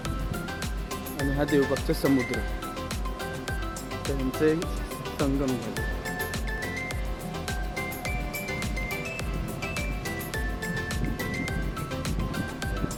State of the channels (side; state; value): both; identical; correlation 1.00